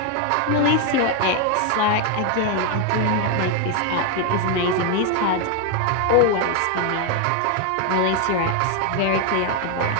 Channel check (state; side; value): different; both; correlation 0.01